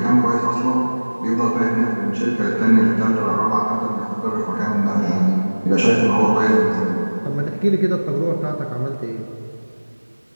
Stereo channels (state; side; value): inverted; both; correlation -1.00